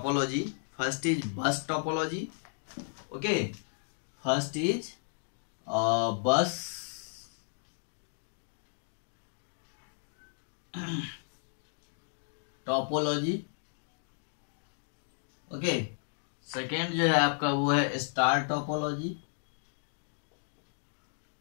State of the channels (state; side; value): silent; right; digital silence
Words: First is bus topology. Okay, first is bus topology. Okay, second जो है आपका वो है स्टार टोपोलॉजी।